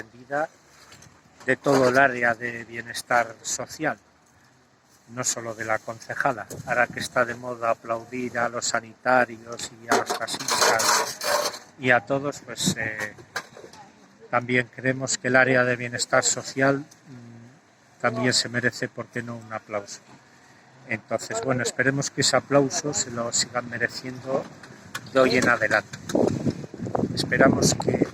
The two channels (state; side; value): identical; both; correlation 1.00